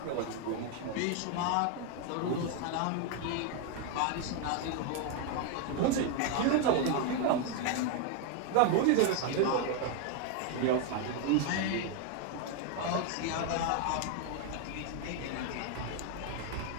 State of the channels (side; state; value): both; different; correlation 0.01